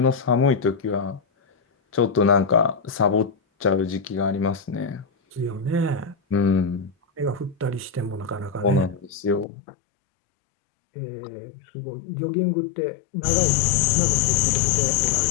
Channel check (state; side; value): drops out; right; at 9.5 s